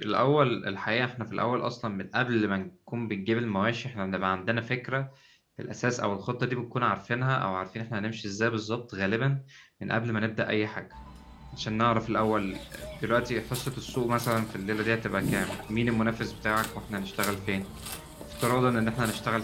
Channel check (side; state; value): both; identical; correlation 1.00